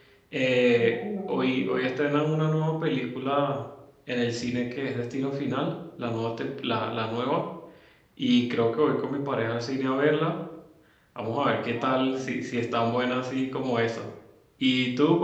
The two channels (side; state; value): both; identical; correlation 1.00